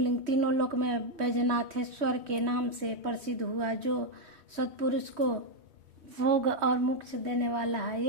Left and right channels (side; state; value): left; late; 3.1 ms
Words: तीनों लोक में बैजनाथेश्वर के नाम से प्रसिद्ध हुआ, जो सत्पुरुष को भोग और मोक्ष देने वाला है।